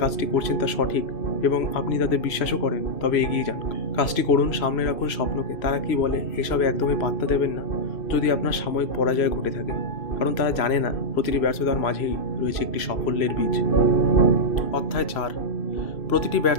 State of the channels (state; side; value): late; right; 3.0 ms